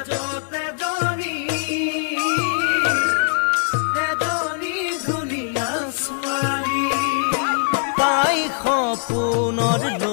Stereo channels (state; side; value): silent; right; digital silence